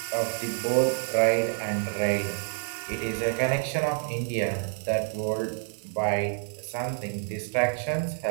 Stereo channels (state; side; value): silent; left; 59 dB below the other